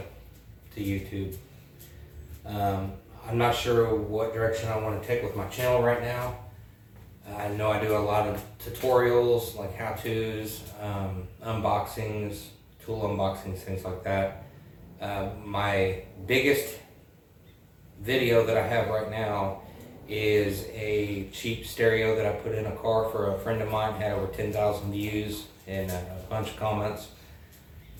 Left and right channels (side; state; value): both; identical; correlation 1.00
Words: YouTube. I'm not sure what direction I want to take with my channel right now. I know I do a lot of tutorials like how-tos, unboxings, tool unboxings, things like that. My biggest video that I have right now is a cheap stereo that I put in a car for a friend of mine. Had over 10,000 views and a bunch of comments.